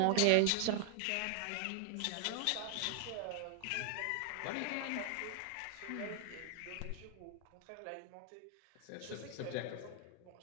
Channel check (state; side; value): different; both; correlation 0.00